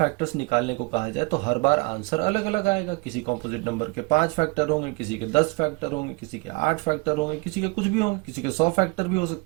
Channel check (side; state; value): left; quieter; 28.2 dB